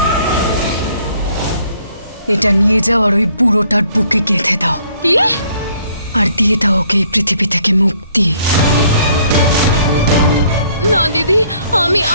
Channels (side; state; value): both; inverted; correlation -0.63